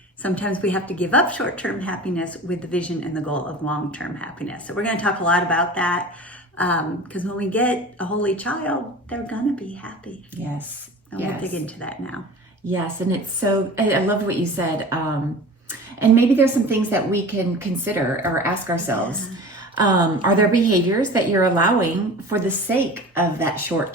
sometimes we have to give up short-term happiness with the vision and the goal of long-term happiness. So we're going to talk a lot about that. Because when we get a holy child, they're gonna be happy. Yes. And we'll dig into that now. Yes, and it's so, I love what you said. And maybe there's some things that we can consider or ask ourselves. Yeah. Are there behaviors that you're allowing for the sake of that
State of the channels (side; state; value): both; normal; correlation 0.37